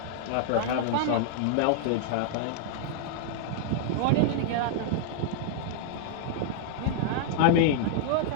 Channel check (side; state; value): both; different; correlation -0.01